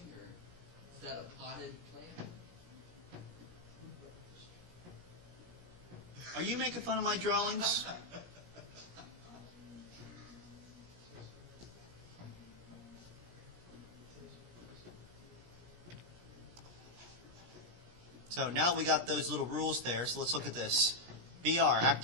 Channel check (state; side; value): late; left; 17 ms